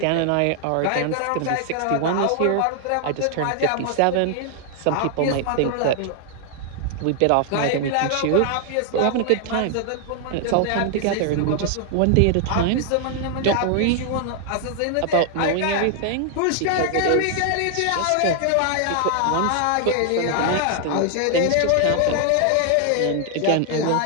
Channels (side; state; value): both; different; correlation 0.00